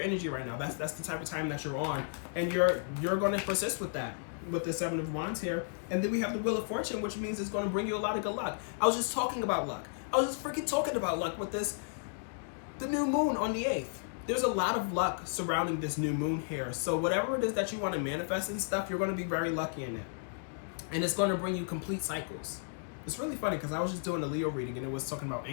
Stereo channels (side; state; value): right; silent; digital silence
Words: energy right now. That's the type of time that you're on, and you're going to persist with that, with the Seven of Wands here. And then we have the Wheel of Fortune, which means it's going to bring you a lot of good luck. I was just talking about luck. I was just freaking talking about luck with the new moon on the 8th. There's a lot of luck surrounding this new moon here. So whatever it is that you want to manifest and stuff, you're going to be very lucky in it. And it's going to bring you complete cycles. It's really funny because I was just doing a Leo reading and it was talking about